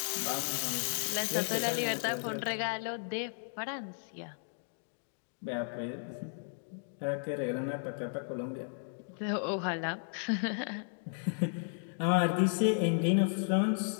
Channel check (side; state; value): right; silent; digital silence